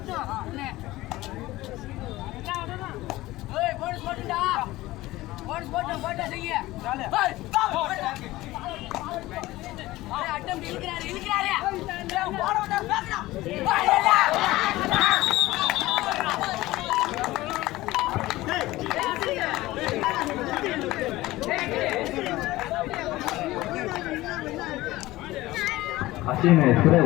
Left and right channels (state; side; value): quieter; right; 17.9 dB